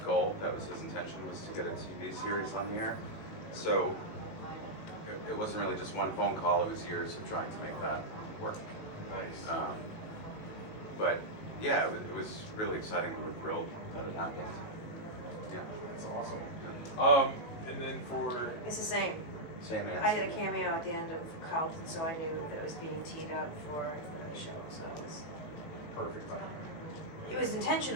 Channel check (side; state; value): right; late; 19 ms